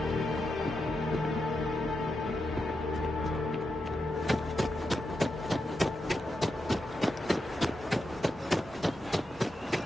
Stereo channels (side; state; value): both; normal; correlation 0.86